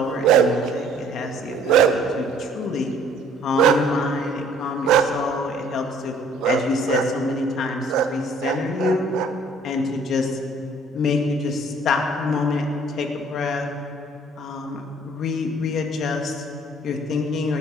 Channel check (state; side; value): normal; both; correlation 0.56